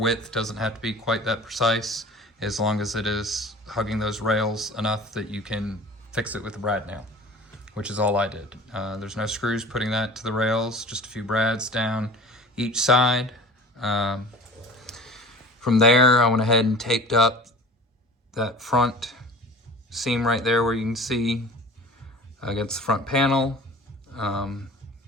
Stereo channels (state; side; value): normal; both; correlation 0.41